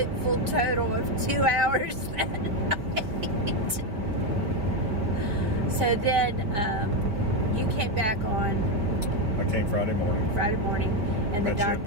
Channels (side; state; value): left; late; 4.8 ms